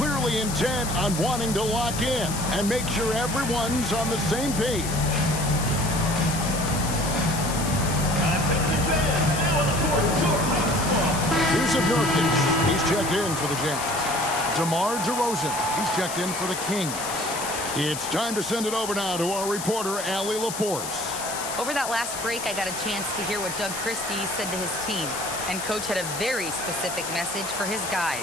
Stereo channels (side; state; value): left; noise; hiss, 7 dB below the sound